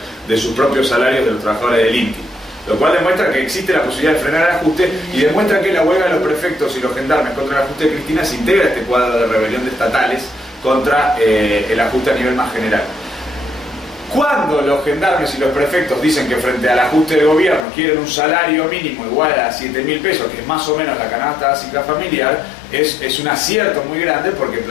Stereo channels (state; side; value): drops out; right; at 17.7 s